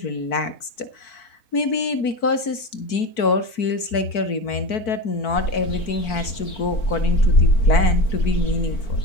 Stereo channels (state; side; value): late; right; 4.5 ms